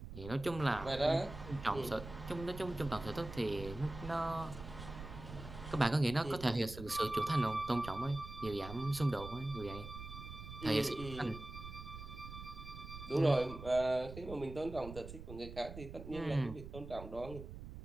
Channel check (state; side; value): noise; right; rumble, 11 dB below the sound